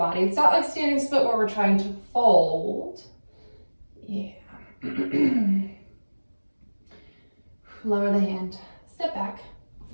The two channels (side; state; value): both; inverted; correlation -1.00